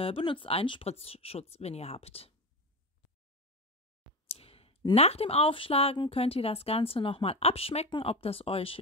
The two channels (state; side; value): normal; both; correlation 0.20